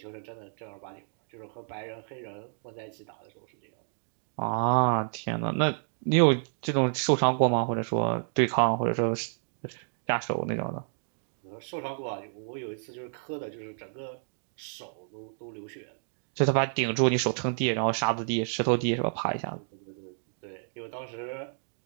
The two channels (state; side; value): silent; left; digital silence